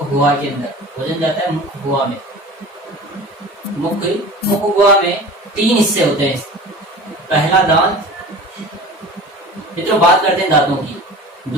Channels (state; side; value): normal; both; correlation 0.38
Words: गुहा के अंदर, भोजन जाता है मुख गुहा में। मुख गुहा में 3 हिस्से होते हैं। पहला दांत, मित्रों बात करते हैं दांतों की।